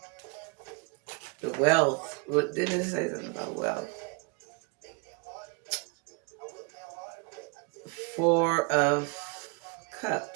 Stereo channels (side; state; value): left; quieter; 30.0 dB